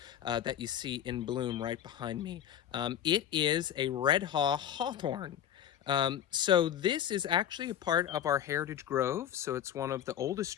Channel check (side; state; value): right; quieter; 10.3 dB